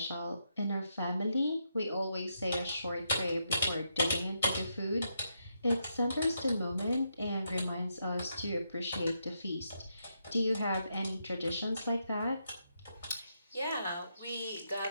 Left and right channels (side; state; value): both; inverted; correlation -0.81